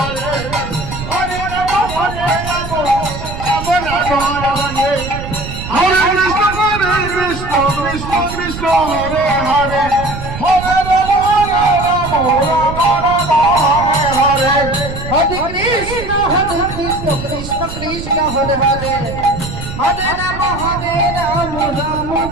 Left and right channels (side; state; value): right; noise; rumble, 9 dB below the sound